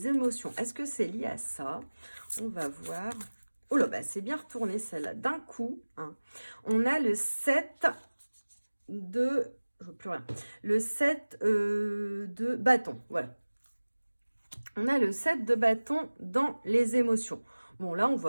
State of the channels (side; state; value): both; inverted; correlation -1.00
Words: émotions. Est-ce que c'est lié à ça? On va voir. Oh là, bah, c'est bien retourné celle-là d'un coup. Hein. On a le 7 de... Je vois plus rien. Le 7 de bâton. Voilà. On a le 7 de bâton dans les émotions. Bon, là, on